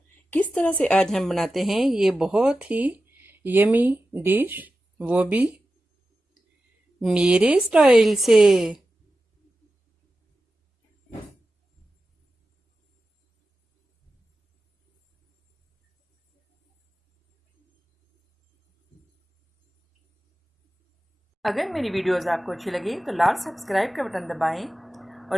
किस तरह से आज हम बनाते हैं ये बहुत ही यमी डिश, वो भी मेरे स्टाइल से। अगर मेरी वीडियोस आपको अच्छी लगी तो लाल सब्सक्राइब का बटन दबाएं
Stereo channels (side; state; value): both; normal; correlation 0.93